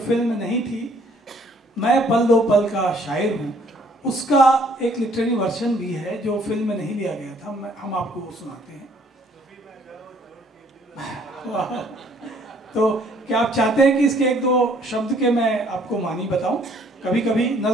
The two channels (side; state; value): both; normal; correlation 0.61